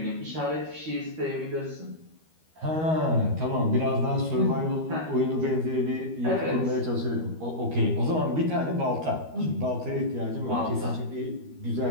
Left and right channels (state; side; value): late; left; 13 ms